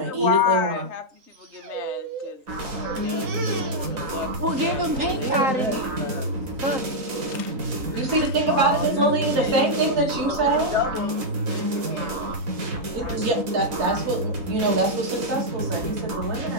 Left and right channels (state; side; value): late; left; 3.9 ms